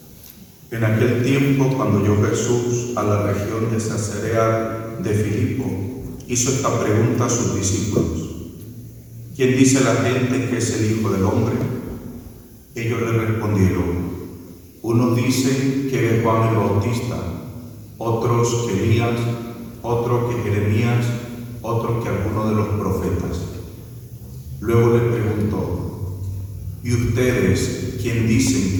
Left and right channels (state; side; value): identical; both; correlation 1.00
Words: En aquel tiempo, cuando llegó Jesús a la región de Cesarea de Filipo, hizo esta pregunta a sus discípulos: ¿Quién dice la gente que es el Hijo del Hombre? Ellos le respondieron: unos dicen que es Juan el Bautista, otros que Elías, otros que Jeremías, otros que alguno de los profetas. Luego les preguntó: ¿y ustedes quién dicen